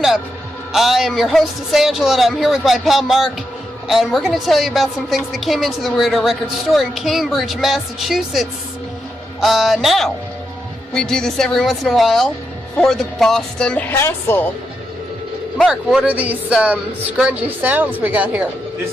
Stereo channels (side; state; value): both; normal; correlation 0.84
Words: I am your hostess Angela and I'm here with my pal Mark, and we're going to tell you about some things that came into the Weirdo Records store in Cambridge, Massachusetts. Now, we do this every once in a while for the Boston Hassle. Mark, what are these scrungy sounds we got here?